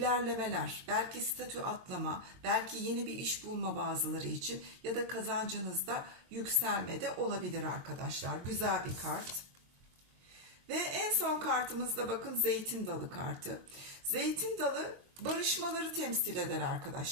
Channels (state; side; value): late; left; 23 ms